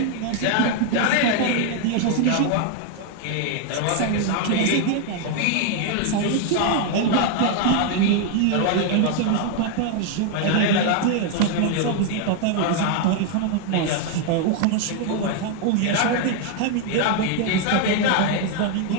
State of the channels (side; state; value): both; different; correlation 0.00